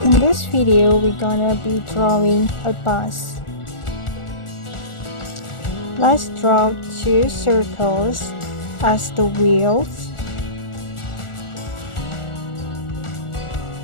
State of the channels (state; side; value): late; right; 1.4 ms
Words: In this video, we're gonna be drawing a bus. Let's draw two circles as the wheels.